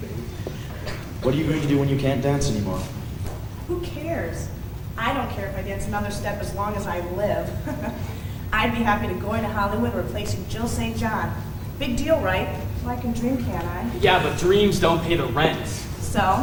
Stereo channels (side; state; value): both; identical; correlation 1.00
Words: What are you going to do when you can't dance anymore? Who cares? I don't care if I dance another step as long as I live. I'd be happy to go into Hollywood replacing Jill St. John. Big deal, right? So I can dream, can't I? Yeah, but dreams don't pay the rent. So,